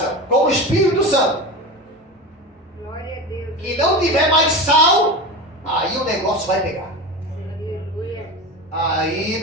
com o Espírito Santo, que não tiver mais sal, aí o negócio vai pegar. Aí,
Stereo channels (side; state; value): both; normal; correlation 0.27